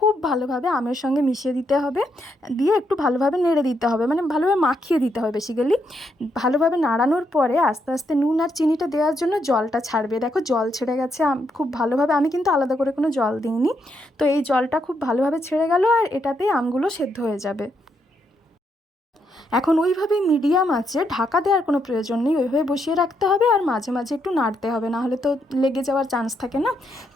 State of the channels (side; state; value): both; normal; correlation 0.78